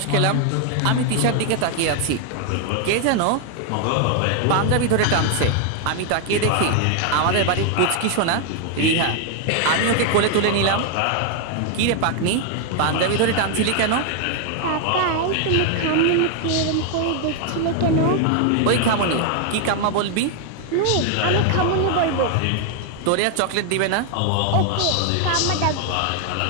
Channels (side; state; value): both; different; correlation 0.00